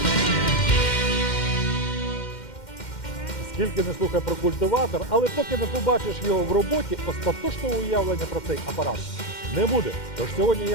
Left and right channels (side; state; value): right; late; 2.1 ms